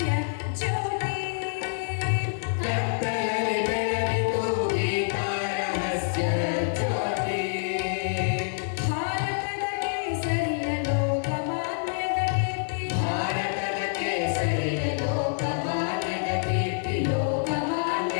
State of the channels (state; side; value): silent; right; digital silence